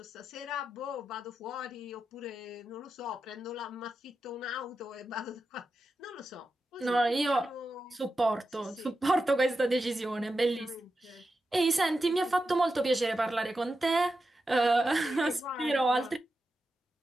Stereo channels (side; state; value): both; normal; correlation 0.90